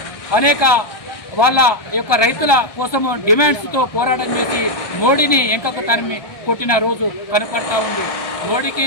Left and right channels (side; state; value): right; late; 1.2 ms